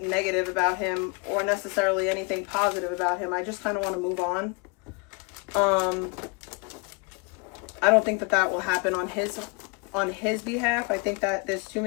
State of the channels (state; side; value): quieter; right; 30.3 dB